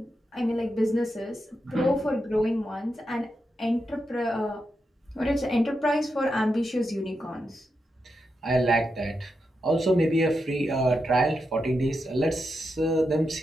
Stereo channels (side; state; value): both; normal; correlation 0.86